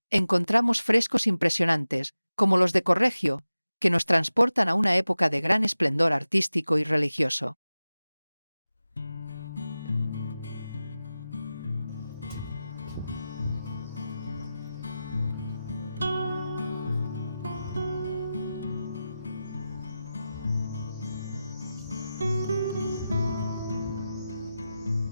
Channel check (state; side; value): inverted; both; correlation -0.94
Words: encontramos frescos impresionantes, como los de Correggio, que nos transportan a una época de gran esplendor artístico y religioso.